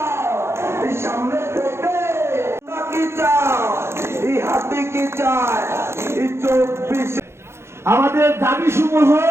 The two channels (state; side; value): late; left; 0.13 ms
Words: আমাদের দাবি সমূহ